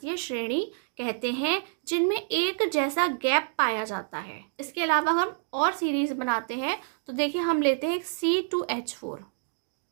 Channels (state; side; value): silent; left; digital silence